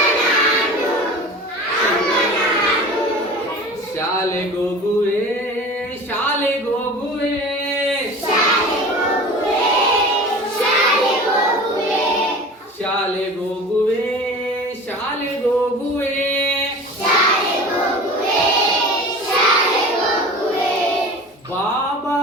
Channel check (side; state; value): both; normal; correlation 0.37